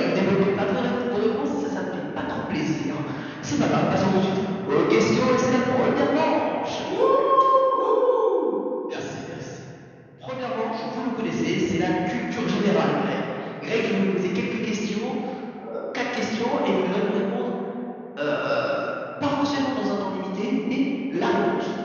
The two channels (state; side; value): identical; both; correlation 1.00